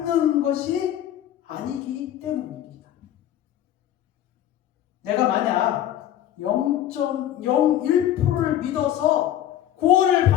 것이 아니기 때문입니다. 내가 만약 0.01%를 믿어서 구원을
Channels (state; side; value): quieter; right; 11.6 dB